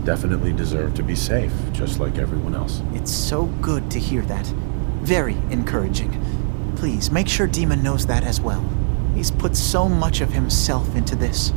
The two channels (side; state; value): left; silent; 66 dB below the other